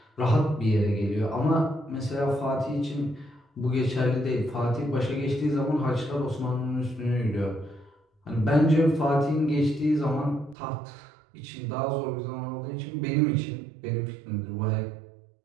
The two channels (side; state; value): left; drops out; at 10.6 s